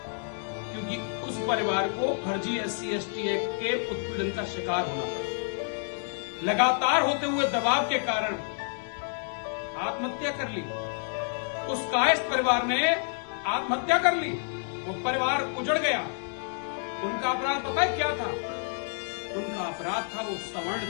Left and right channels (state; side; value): silent; right; 59 dB below the other